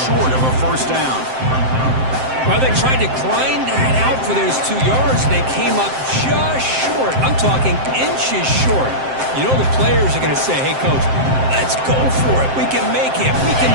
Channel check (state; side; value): late; left; 7.7 ms